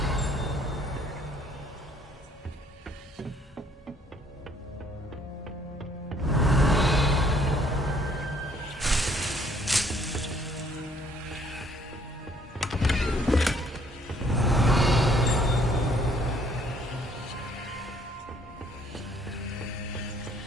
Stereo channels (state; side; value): normal; both; correlation 0.63